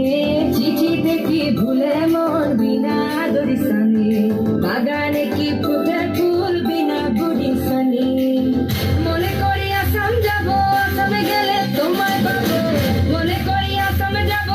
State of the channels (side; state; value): both; identical; correlation 1.00